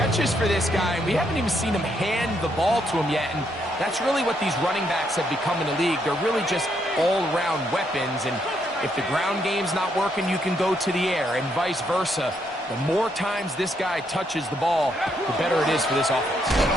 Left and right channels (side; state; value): both; normal; correlation 0.75